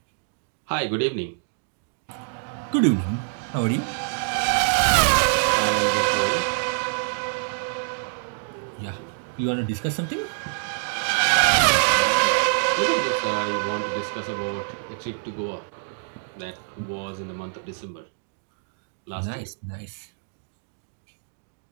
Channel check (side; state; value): left; silent; digital silence